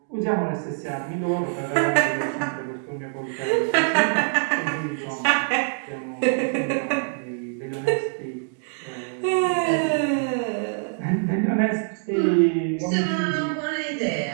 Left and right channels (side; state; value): left; silent; digital silence